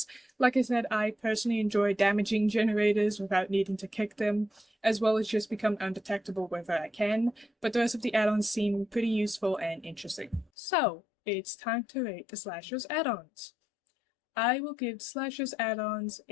Like I said, I personally enjoy damaging generators without needing to kick them, as well as just become undetectable wherever I can, but the rest of the add-ons seem pretty useful and interesting. So, it's time to rate the slashers add-ons. I will give slashers add-ons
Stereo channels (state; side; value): drops out; right; at 10.5 s